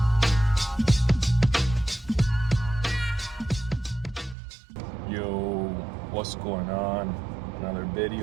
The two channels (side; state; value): left; drops out; at 4.4 s